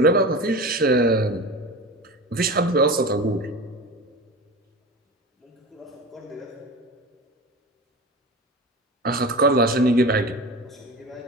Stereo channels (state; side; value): normal; both; correlation 0.31